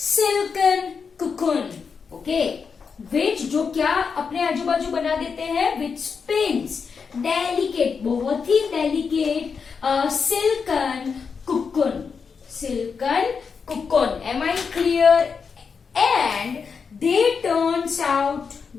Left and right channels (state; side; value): quieter; right; 5.7 dB